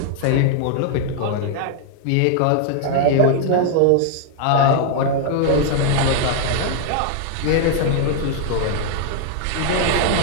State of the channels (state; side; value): different; both; correlation 0.00